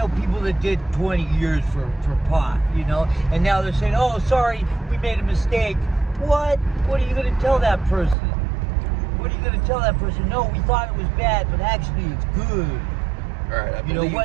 people that did 20 years for pot, you know, and now they're saying, oh, sorry, we made a mistake. What are you going to tell that person? what are you going to tell that person? No, we thought it was bad, but actually it's good. All right, I You know believe.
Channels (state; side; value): drops out; left; at 8.2 s